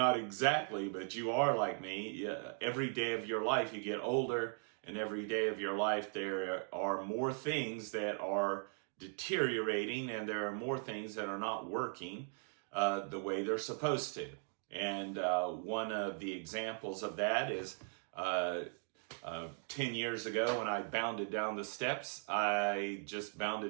exactly, but you are like me, every day of your life you get older, and every day of your life there are more things that are deteriorating, and there are more things that are not working the way they're supposed to. And one of the examples of that is 10 years ago when I bounded down the steps. I just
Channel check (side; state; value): left; silent; 52 dB below the other